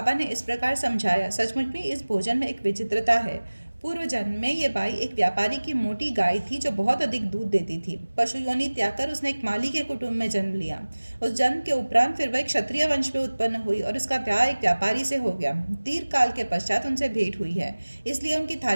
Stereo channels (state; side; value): inverted; both; correlation -1.00